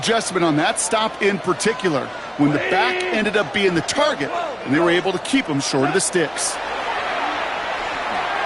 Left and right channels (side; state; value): both; identical; correlation 1.00